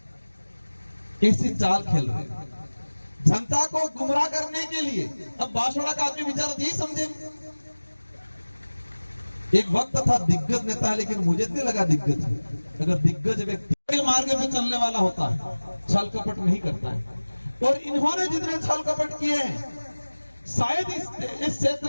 ऐसी चाल खेल रहे जनता को गुमराह करने के लिए। अब बांसवाड़ा का आदमी बेचारा यही समझे, एक वक्त था दिग्गज नेता है, लेकिन मुझे नहीं लगा दिग्गज है। अगर दिग्गज व्यक्ति के मार्ग पे चलने वाला होता है, छल कपट नहीं करता है, और इन्होंने जितने छल कपट किए हैं, शायद इस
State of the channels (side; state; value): both; inverted; correlation -1.00